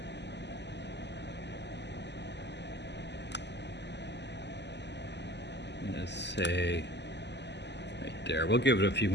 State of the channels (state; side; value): late; right; 0.50 ms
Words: Let's say right there. We'll give it a few